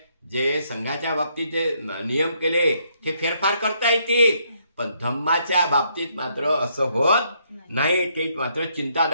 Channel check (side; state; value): both; inverted; correlation -0.72